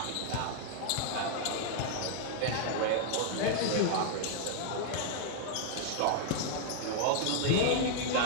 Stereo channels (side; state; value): both; different; correlation 0.00